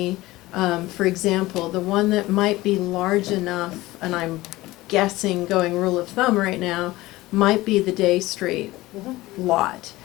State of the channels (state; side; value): quieter; right; 18.6 dB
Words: for example, the one that might be large enough, and I'm guessing going rule of thumb right now, might be the Day Street lot